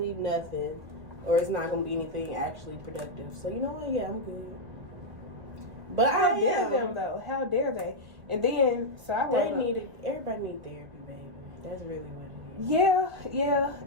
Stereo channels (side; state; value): left; late; 1.2 ms